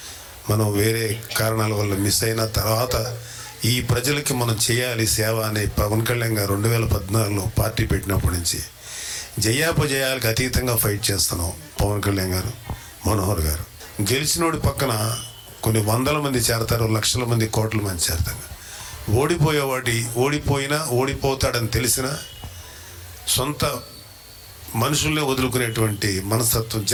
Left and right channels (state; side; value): identical; both; correlation 1.00